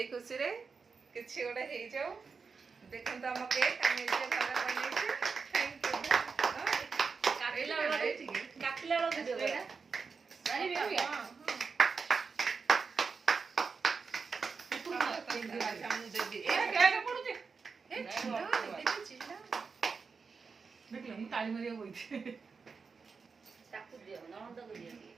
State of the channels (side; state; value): left; quieter; 5.1 dB